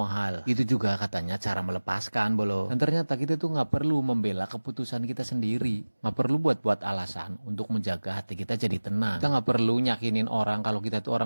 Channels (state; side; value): inverted; both; correlation -1.00